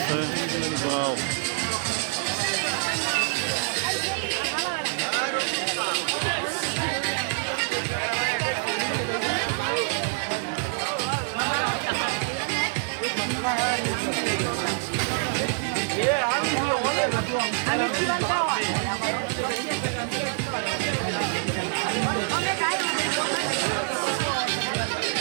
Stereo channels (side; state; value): left; silent; 61 dB below the other